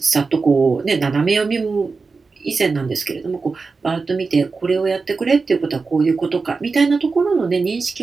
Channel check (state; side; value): quieter; left; 4.4 dB